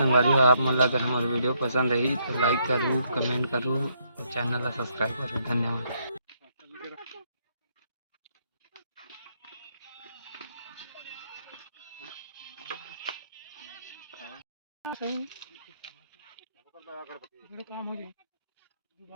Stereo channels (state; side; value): inverted; both; correlation -0.73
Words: हो। आप मन ला अगर हमारी वीडियो पसंद रही तो लाइक करूँ, कमेंट करूँ और चैनल ला सब्सक्राइब करूँ। धन्यवाद। काम हो जाए,